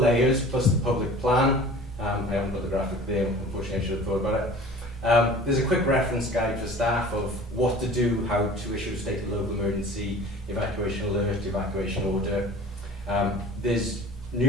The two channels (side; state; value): both; normal; correlation 0.43